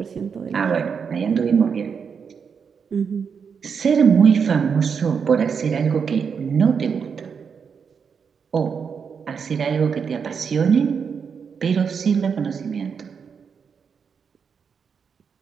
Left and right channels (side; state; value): left; quieter; 6.4 dB